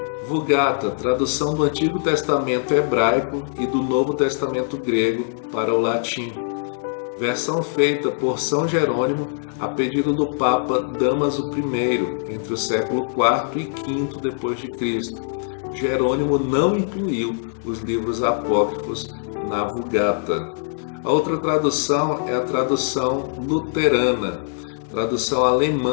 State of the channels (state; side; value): silent; right; digital silence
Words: Vulgata, tradução do Antigo Testamento hebraico e do Novo Testamento grego para o latim. Versão feita por São Jerônimo a pedido do Papa Dámaso I, entre o século IV e V depois de Cristo. Jerônimo não incluiu os livros apócrifos na Vulgata. A outra tradução é a tradução luterana, tradução